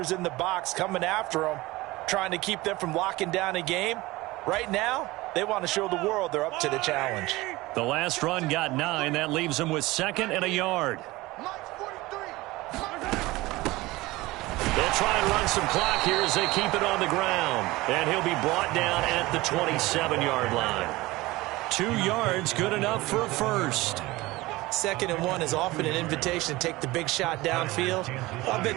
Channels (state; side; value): quieter; left; 20.0 dB